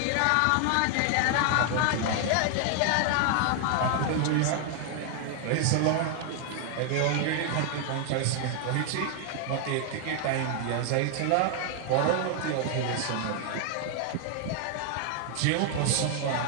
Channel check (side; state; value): both; different; correlation 0.00